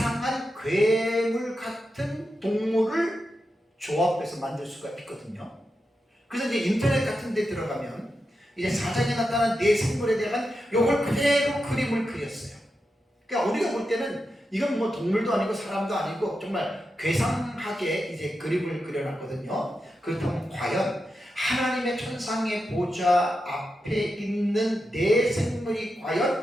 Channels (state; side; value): normal; both; correlation 0.88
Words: 괴물 같은 동물을 조합해서 만들 수가 있거든요. 그래서 이제 인터넷 같은 데 들어가면 이제 사장에 나타난 네 생물에 대한 요걸 그대로 그림을 그렸어요. 그러니까 우리가 볼 때는 이건 뭐 동물도 아니고 사람도 아니고 정말 괴상하게 이제 그림을 그려놨거든요. 그렇다면 과연 하나님의 천상의 보좌 앞에 있는 네 생물이